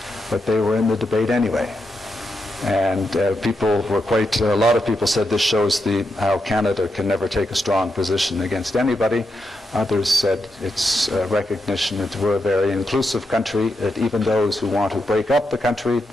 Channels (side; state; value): both; normal; correlation 0.84